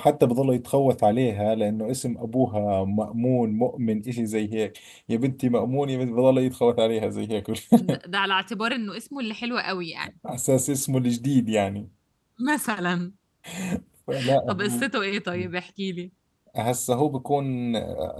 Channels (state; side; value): identical; both; correlation 1.00